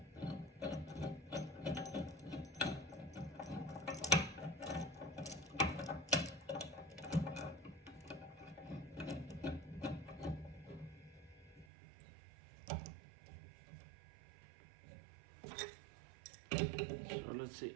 So let's see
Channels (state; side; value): drops out; left; at 11.7 s